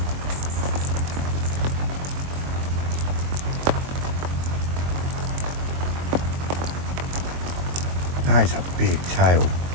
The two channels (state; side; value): late; left; 22 ms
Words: That is a big tail.